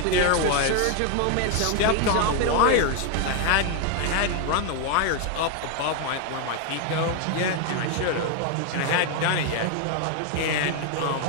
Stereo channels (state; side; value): different; both; correlation 0.01